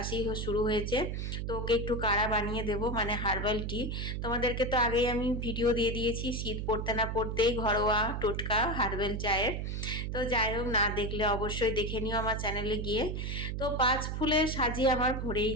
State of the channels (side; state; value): right; noise; hum, 3 dB below the sound